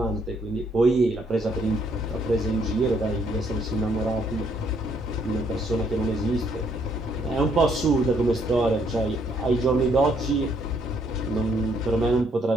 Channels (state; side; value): normal; both; correlation 0.69